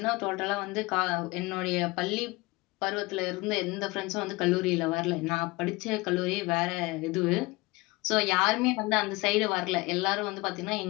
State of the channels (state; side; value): quieter; right; 23.0 dB